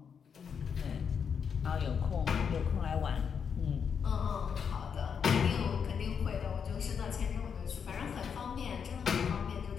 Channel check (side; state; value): right; quieter; 6.9 dB